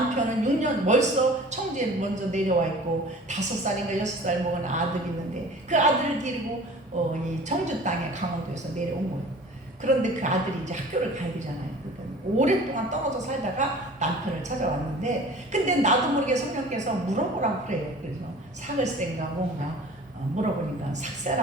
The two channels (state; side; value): normal; both; correlation 0.44